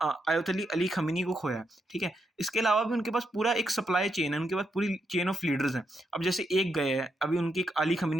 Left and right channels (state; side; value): normal; both; correlation 0.81